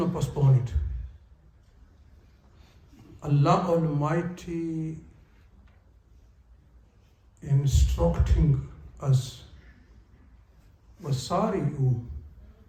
postpone it. Allah Almighty instructing us, وَسَارِعُوا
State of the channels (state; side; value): identical; both; correlation 1.00